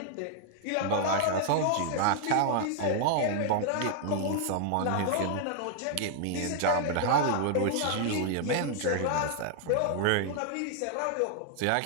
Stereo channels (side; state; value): both; different; correlation 0.00